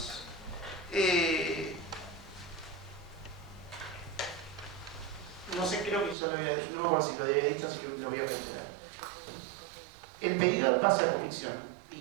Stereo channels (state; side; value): drops out; left; at 6.2 s